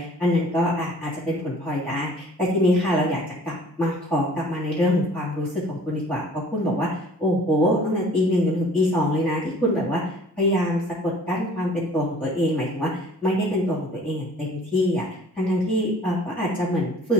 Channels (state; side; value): normal; both; correlation 0.52